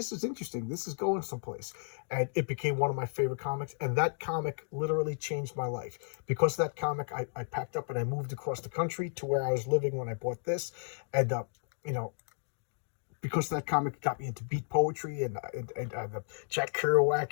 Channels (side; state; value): right; silent; digital silence